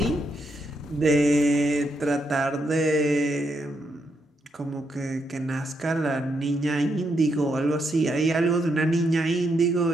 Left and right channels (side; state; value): both; normal; correlation 0.79